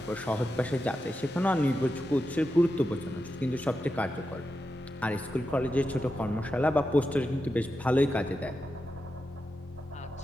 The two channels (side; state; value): both; normal; correlation 0.89